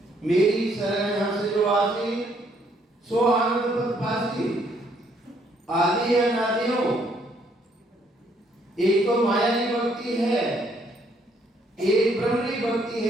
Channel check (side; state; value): both; normal; correlation 0.68